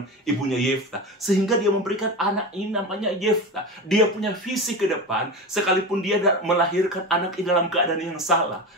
ibunya Yefta, sehingga dia memberikan anak ini namanya Yefta. Dia punya visi ke depan, sekalipun dia melahirkan anak ini dalam keadaan yang salah,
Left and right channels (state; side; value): normal; both; correlation 0.25